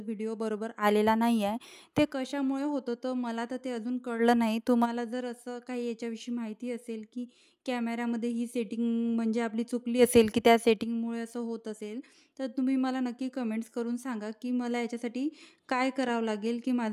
व्हिडिओ बरोबर आलेला नाही आहे. ते कशामुळे होत होतं मला तर ते अजून कळलं नाही. तुम्हाला जर असं काही याच्याविषयी माहिती असेल की कॅमेरामध्ये ही सेटिंग म्हणजे आपली चुकली असेल की त्या सेटिंगमुळे असं होत असेल, तर तुम्ही मला नक्की कमेंट्स करून सांगा की मला याच्यासाठी काय करावं लागेल की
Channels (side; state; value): both; identical; correlation 1.00